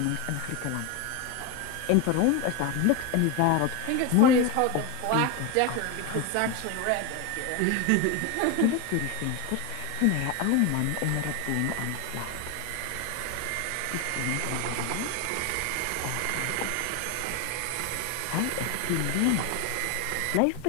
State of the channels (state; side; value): different; both; correlation 0.02